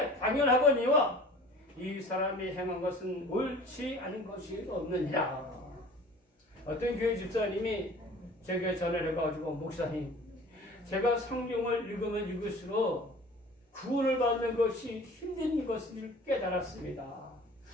당연하거니와 이 사람이 행한 것은 옳지 않은 것이 없느니라. 어떤 교회 집사님이 제게 전화를 해가지고 목사님 제가 성경을 읽으면 읽을수록 구원을 받는 것이 힘든 것을 깨달았습니다.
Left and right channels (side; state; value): both; normal; correlation 0.45